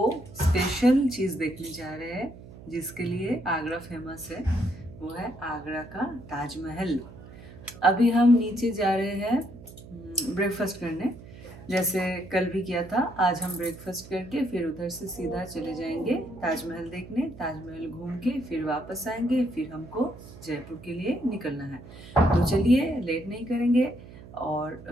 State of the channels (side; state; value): right; noise; hum, 17 dB below the sound